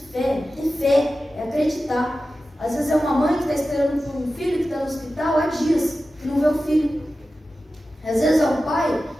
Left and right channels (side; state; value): both; normal; correlation 0.94